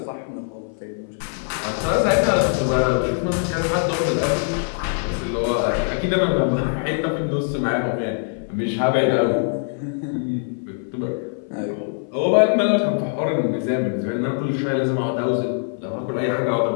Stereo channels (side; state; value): right; silent; 59 dB below the other